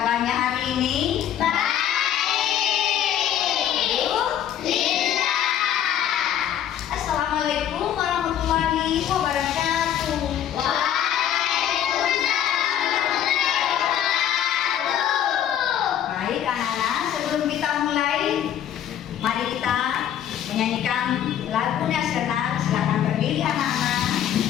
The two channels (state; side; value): quieter; right; 10.4 dB